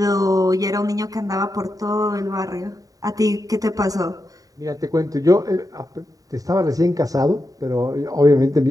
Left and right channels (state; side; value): late; left; 0.17 ms